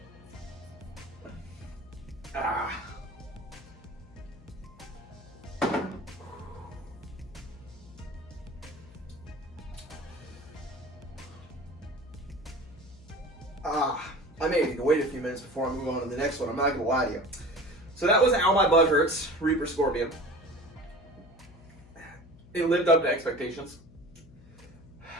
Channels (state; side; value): noise; left; hum, 21 dB below the sound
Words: Ah. I may need to wait a few minutes before I move on to the next one. I'm not going to lie to you. So that was Ow My Butt Hurts, Reaper Scorpion. It lived up to expectations.